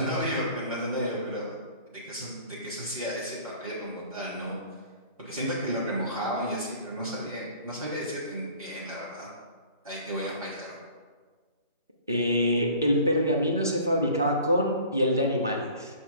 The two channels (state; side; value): inverted; both; correlation -0.47